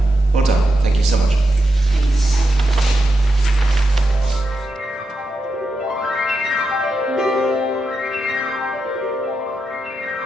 Well done. Thank you so much. Thanks.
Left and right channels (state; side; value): normal; both; correlation 0.86